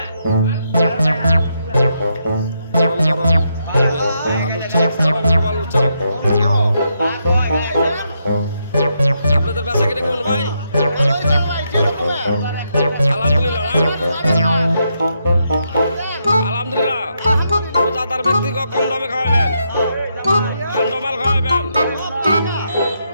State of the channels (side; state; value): both; inverted; correlation -0.80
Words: আপনাদের বেচা কিনে কেমন ভাই? আলহামদুলিল্লাহ, আলহামদুলিল্লাহ। রোজাদার ব্যক্তিকে কম দামে খাওয়াবেন, ঠান্ডা মাল খাওয়াবেন।